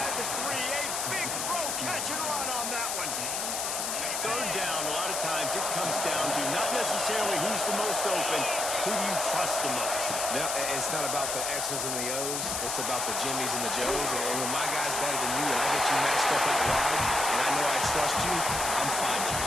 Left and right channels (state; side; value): noise; left; hiss, 1 dB below the sound